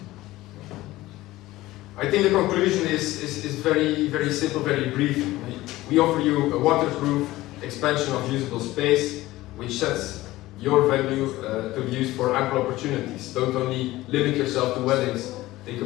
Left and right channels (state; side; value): quieter; right; 17.4 dB